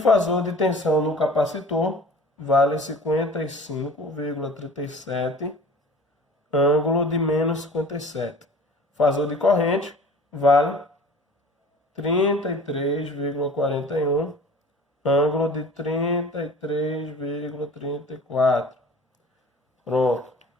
de tensão no capacitor vale 55,37, ângulo de menos 57. Fasor de corrente vale 33,41, ângulo de 33,34. Pronto.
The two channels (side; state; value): both; normal; correlation 0.44